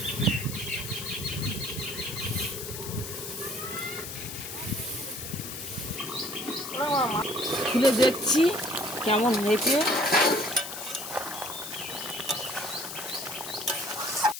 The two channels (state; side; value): noise; left; hiss, 8 dB below the sound